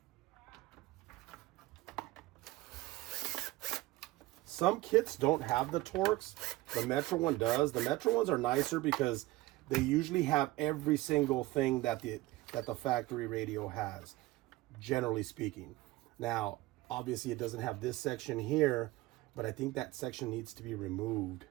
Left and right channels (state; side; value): quieter; left; 18.7 dB